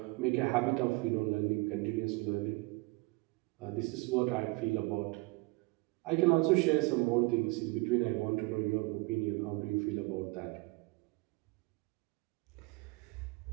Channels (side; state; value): left; quieter; 25.9 dB